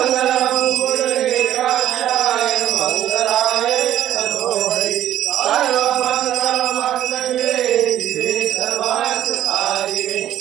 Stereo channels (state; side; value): quieter; left; 12.0 dB